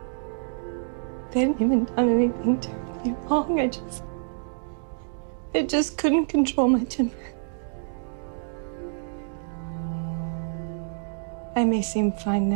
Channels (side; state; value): left; silent; digital silence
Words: They hadn't even done anything terribly wrong. I just couldn't control my temper. I may seem fine